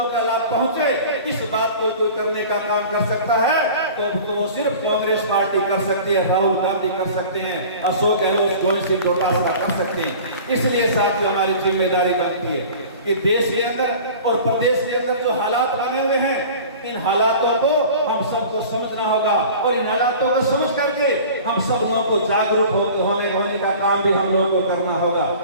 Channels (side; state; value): both; inverted; correlation -0.41